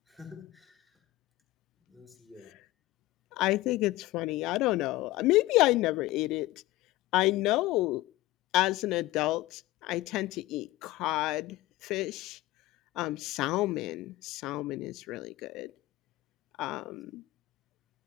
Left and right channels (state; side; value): quieter; right; 17.9 dB